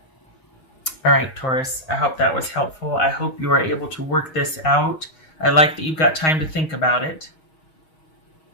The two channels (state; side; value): late; right; 6.3 ms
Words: All right, Taurus, I hope that was helpful. I hope you are able to work this out. I like that you've got time to think about it.